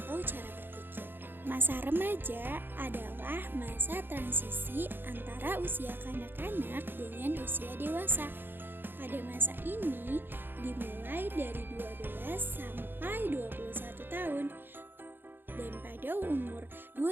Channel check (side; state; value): left; late; 0.099 ms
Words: cara berpikir. Masa remaja adalah masa transisi antara usia kanak-kanak dengan usia dewasa. Pada masa ini dimulai dari 12 sampai 21 tahun. Dan pada umur